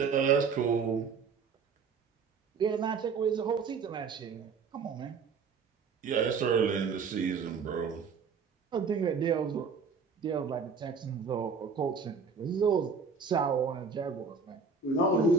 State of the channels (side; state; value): left; quieter; 5.3 dB